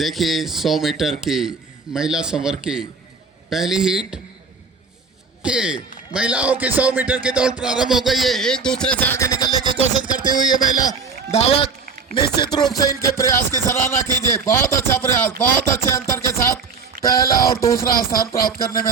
100 मीटर की महिला संवर्ग की पहली हीट के महिलाओं की 100 मीटर की दौड़ प्रारंभ हो गई है। एक दूसरे से आगे निकलने की कोशिश करती हुई ये महिला धावक, निश्चित रूप से इनके प्रयास की सराहना कीजिए। बहुत अच्छा प्रयास, बहुत अच्छे अंतर के साथ पहला और दूसरा स्थान प्राप्त करने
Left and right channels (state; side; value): quieter; left; 4.9 dB